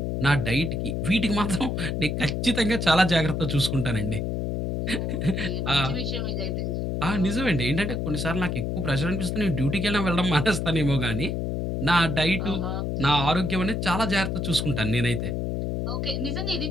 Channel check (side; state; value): left; noise; hum, 1 dB below the sound